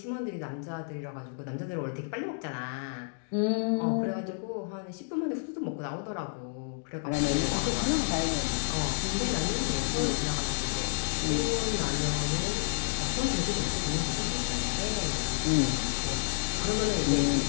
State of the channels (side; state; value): right; silent; digital silence